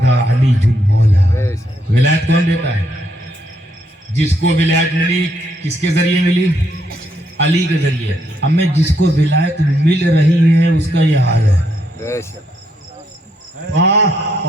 علی المولا۔ ولایت کون دیتا ہے؟ جس کو ولایت ملی کس کے ذریعے ملی؟ علی کے ذریعے۔ اب میں جس کو ولایت مل رہی ہے اس کا یہ حال ہے،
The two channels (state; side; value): normal; both; correlation 0.75